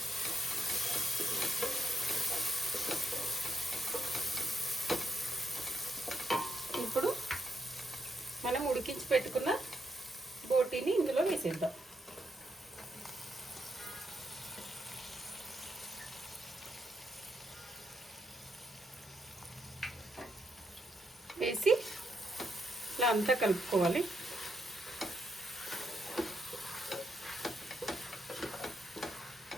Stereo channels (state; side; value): normal; both; correlation 0.79